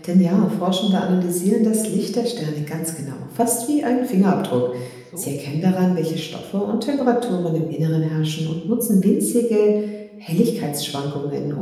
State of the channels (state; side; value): identical; both; correlation 1.00